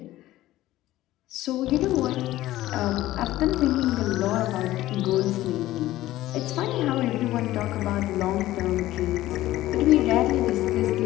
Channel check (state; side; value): quieter; right; 15.5 dB